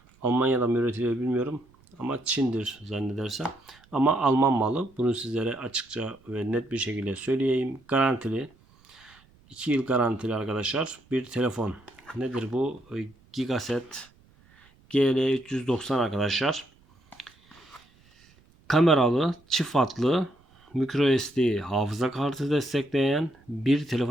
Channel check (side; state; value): right; noise; rumble, 30 dB below the sound